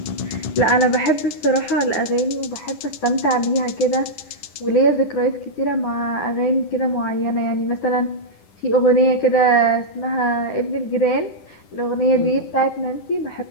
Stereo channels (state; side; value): late; right; 10 ms